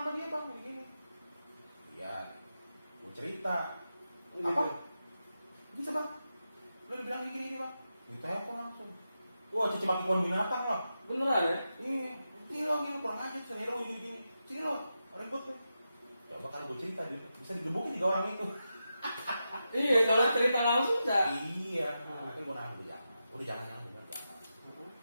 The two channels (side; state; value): both; inverted; correlation -0.89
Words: sama dia bang? Gini. Iya, gue cerita. Apa? Bisa bang? Lo dibilang gini bang? Ditelepon langsung. Wah, cici maki pohon binatang loh. Beneran ya? Iya, ini lo gini kurang aja, sini lo gini. Sini lo, ribut tuh. Coba kalau gue cerita bisa digebukin 3 orang itu. Iya, kalau cerita langsung enggak. Iya. Akhirnya gue nahan gue jangan. Udah jangan jangan.